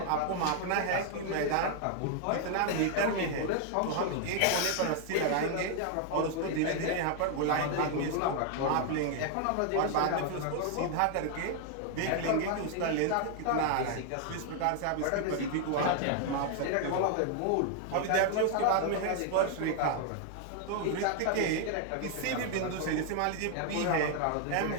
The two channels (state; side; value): different; both; correlation 0.00